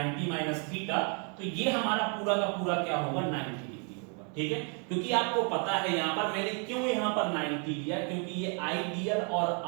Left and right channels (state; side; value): quieter; left; 39.0 dB